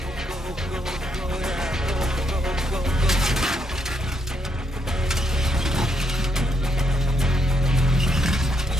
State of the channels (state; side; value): normal; both; correlation 0.76